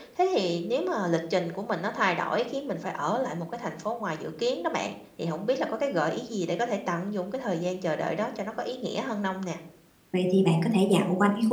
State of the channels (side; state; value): both; identical; correlation 1.00